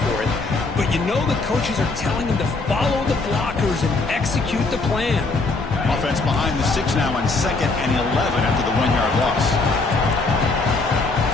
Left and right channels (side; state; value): right; quieter; 3.6 dB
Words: it, but you know the coaches are telling them to follow the blockers and execute the plan. Offense behind the 6 now on 2nd and 11 after the 1-yard loss.